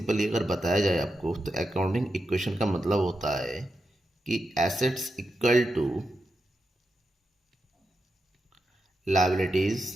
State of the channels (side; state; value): both; normal; correlation 0.87